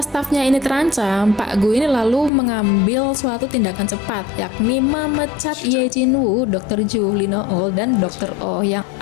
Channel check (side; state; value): right; drops out; at 2.3 s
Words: stafnya ini terancam, Pak Gu ini lalu mengambil suatu tindakan cepat, yakni memecat Ye Jin-woo, Dr. Ju, Lee No-eul, dan Dr. Oh. Yang